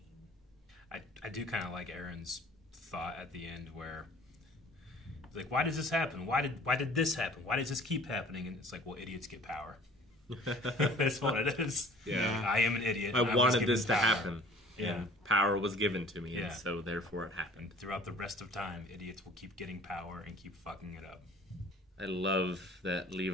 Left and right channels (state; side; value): normal; both; correlation 0.49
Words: I do kind of like Aaron's thought at the end where it's like, why does this happen? Why did this happen? Why does this keep happening? And it's like, well, idiots get power. That's what it is. Yeah. I am an idiot. I and was wanted given this to power. happen. Yeah. And power was given to me, Yeah. and so therefore it happened. And throughout the rest of time, idiots will keep getting power and keep fucking it up. I love that